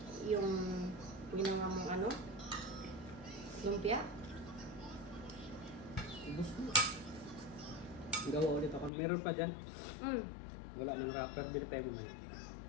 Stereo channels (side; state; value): right; drops out; at 8.9 s